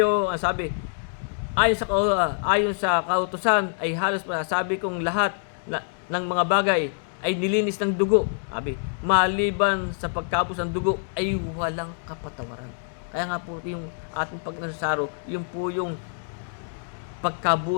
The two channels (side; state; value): right; silent; digital silence